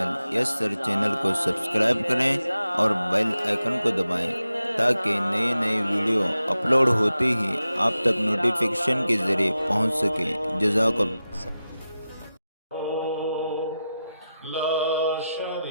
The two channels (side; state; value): both; inverted; correlation -0.92